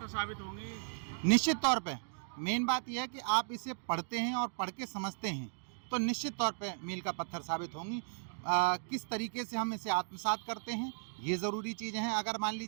साबित होंगी? निश्चित तौर पे मेन बात यह है कि आप इसे पढ़ते हैं और पढ़ के समझते हैं, तो निश्चित तौर पे मील का पत्थर साबित होंगी। किस तरीके से हम इसे आत्मसात करते हैं, ये ज़रूरी चीज़ें हैं। अगर मान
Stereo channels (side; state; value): left; silent; digital silence